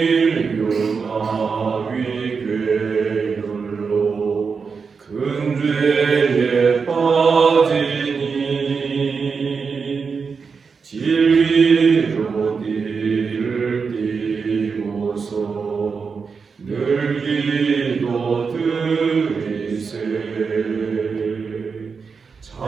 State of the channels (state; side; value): quieter; left; 5.4 dB